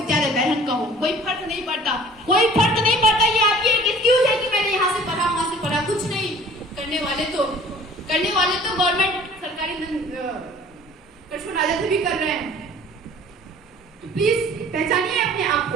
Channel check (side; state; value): both; normal; correlation 0.49